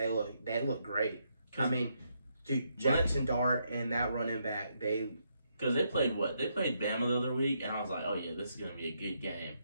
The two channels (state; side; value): inverted; both; correlation -0.78